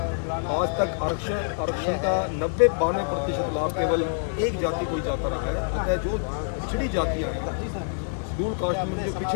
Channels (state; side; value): silent; right; digital silence